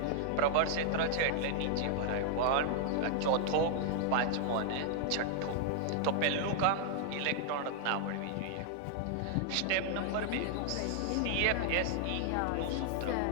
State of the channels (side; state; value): both; different; correlation -0.01